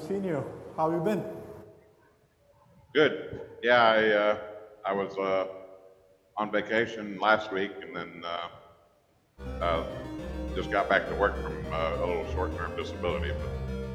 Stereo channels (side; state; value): both; identical; correlation 1.00